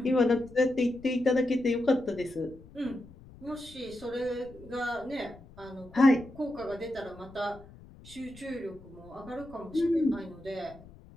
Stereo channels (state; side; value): noise; left; rumble, 20 dB below the sound